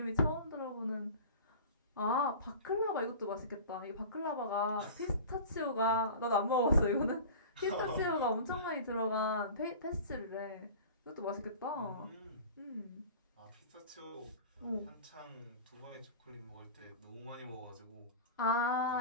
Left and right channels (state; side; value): inverted; both; correlation -0.37